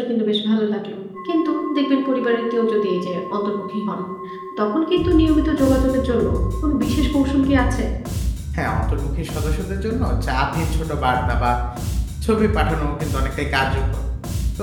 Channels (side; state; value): both; identical; correlation 1.00